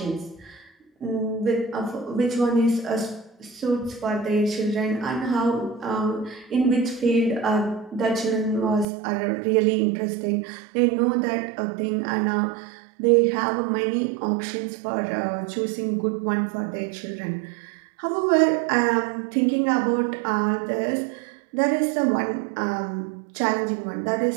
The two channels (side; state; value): left; drops out; at 8.8 s